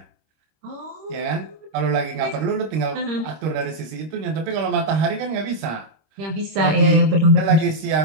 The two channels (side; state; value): left; late; 26 ms